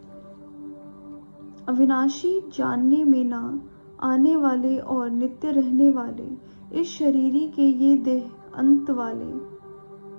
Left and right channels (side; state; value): both; inverted; correlation -1.00